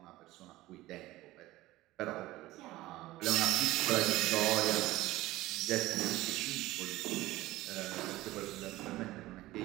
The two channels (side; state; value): left; quieter; 17.4 dB